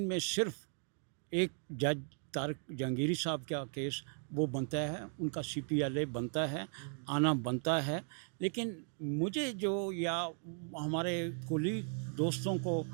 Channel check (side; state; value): left; silent; 53 dB below the other